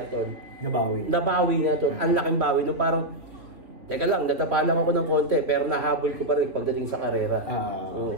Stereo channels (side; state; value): left; late; 2.8 ms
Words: tol. Nabawi niya tol. Ang laking bawi. No, parang, teka lang, natapa lang ako ng konti. Pero nahabol ko pa rin pagdating sa karera.